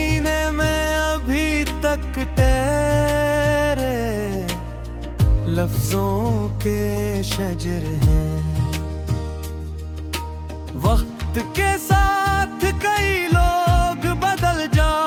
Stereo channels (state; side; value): identical; both; correlation 1.00